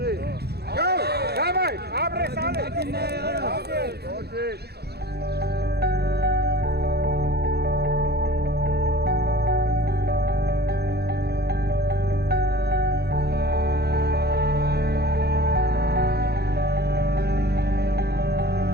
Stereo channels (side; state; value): left; late; 0.47 ms